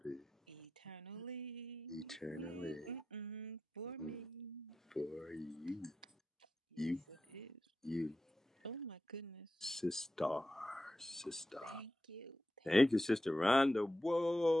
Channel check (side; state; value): both; normal; correlation 0.90